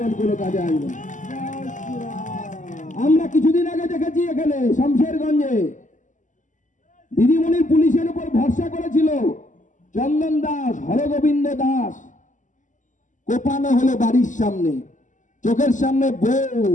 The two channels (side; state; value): right; late; 0.37 ms